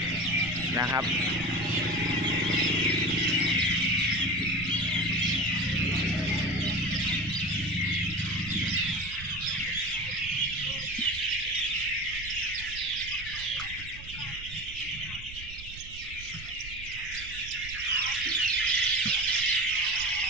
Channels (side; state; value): right; noise; rumble, 14 dB below the sound